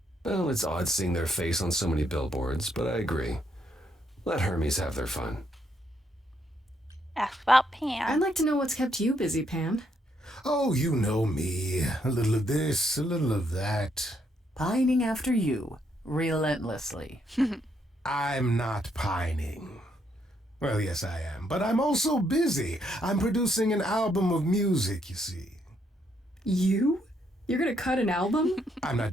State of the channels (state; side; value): normal; both; correlation 0.74